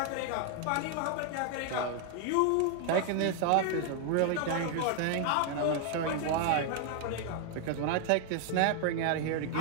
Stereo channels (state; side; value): different; both; correlation 0.00